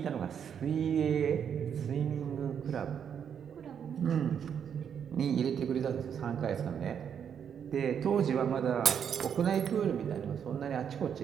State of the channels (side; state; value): left; quieter; 8.0 dB